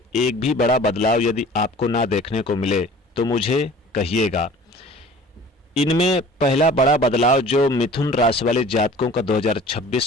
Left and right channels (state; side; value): normal; both; correlation 0.46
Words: एक भी बड़ा बदलाव यदि आपको ना देखने को मिले तो मुझे कहिएगा। इनमें पहला बड़ा बदलाव जो मिथुन राशि वाले जातकों का